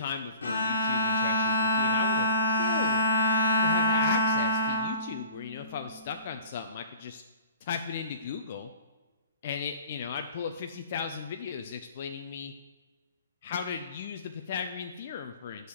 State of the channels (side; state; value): both; inverted; correlation -0.43